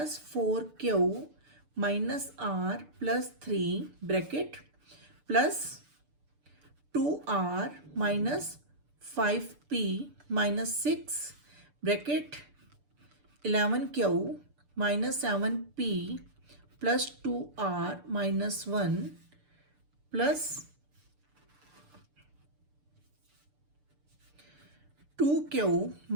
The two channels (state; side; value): late; left; 6.8 ms